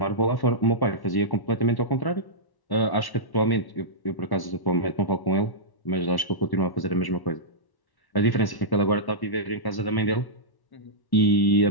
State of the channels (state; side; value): late; right; 1.1 ms